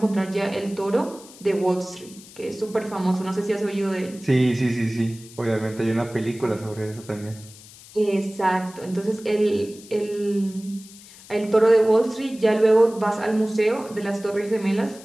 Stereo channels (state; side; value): noise; left; hiss, 20 dB below the sound